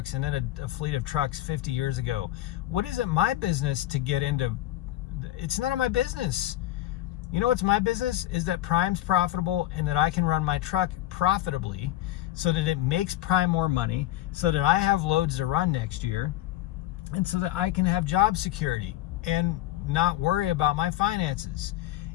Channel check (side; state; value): right; quieter; 14.8 dB